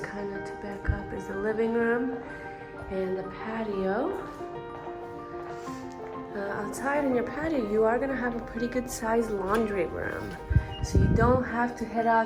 of to back up is the living room and the patio. Outside in your patio, you are gonna have a pretty good sized laundry room. So you don't have to head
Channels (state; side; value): identical; both; correlation 1.00